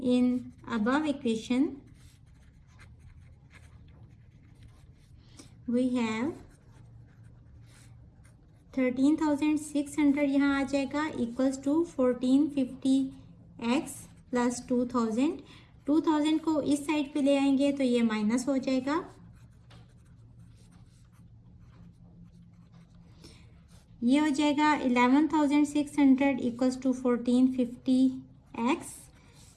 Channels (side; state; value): both; identical; correlation 1.00